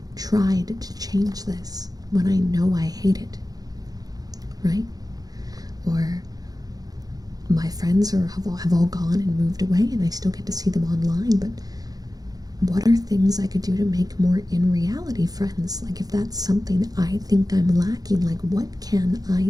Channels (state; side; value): late; left; 0.18 ms